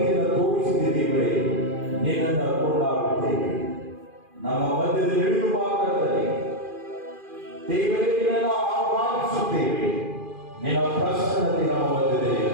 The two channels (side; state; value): left; late; 2.4 ms